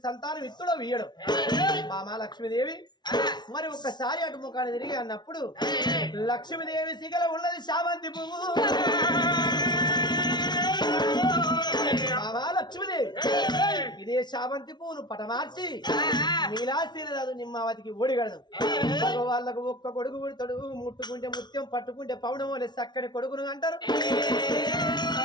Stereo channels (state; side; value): late; right; 0.20 ms